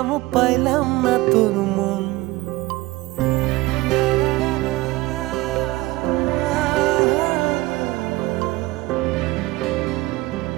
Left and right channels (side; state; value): left; quieter; 19.9 dB